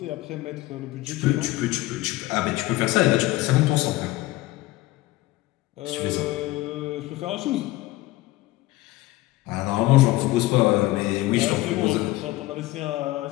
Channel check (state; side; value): quieter; right; 18.1 dB